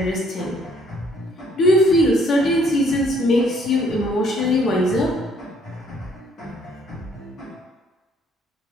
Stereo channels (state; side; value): normal; both; correlation 0.64